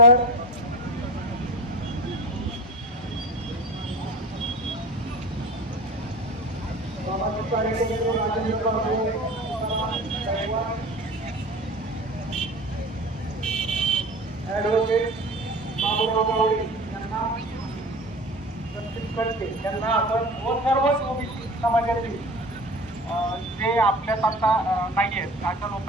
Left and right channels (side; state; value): both; normal; correlation 0.35